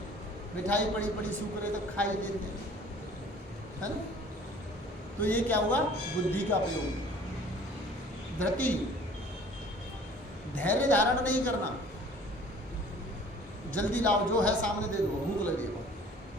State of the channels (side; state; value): both; normal; correlation 0.50